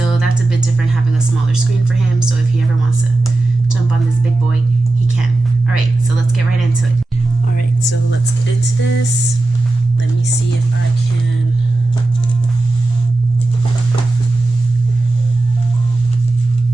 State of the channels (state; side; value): quieter; left; 3.0 dB